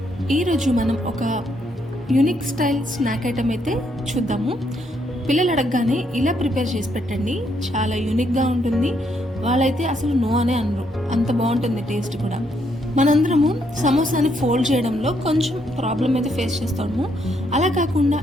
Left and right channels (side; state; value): both; normal; correlation 0.74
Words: ఈరోజు మనం ఒక యూనిక్ స్టైల్ స్నాక్ ఐటమ్ అయితే చూద్దాము. పిల్లలు అడగగానే ఇలా ప్రిపేర్ చేసి పెట్టండి, చాలా యూనిక్గా ఉంటుంది. వాళ్ళైతే అసలు నో అనే అనరు, అంత బాగుంటుంది టేస్ట్ కూడా. మనందరము సమోసాని ఫోల్డ్ చేయడంలో కొంచెం ప్రాబ్లం అయితే ఫేస్ చేస్తాము. అలా కాకుండా